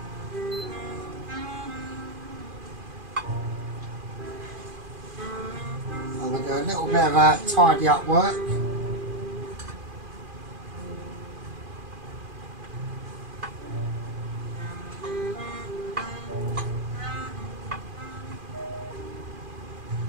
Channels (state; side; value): late; left; 2.4 ms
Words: I'm going to do a little bit of a tidy up work.